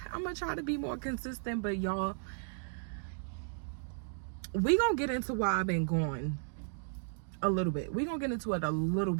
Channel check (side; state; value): left; silent; digital silence